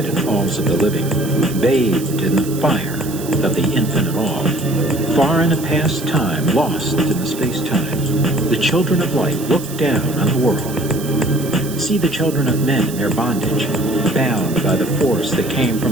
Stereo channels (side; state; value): right; noise; hiss, 13 dB below the sound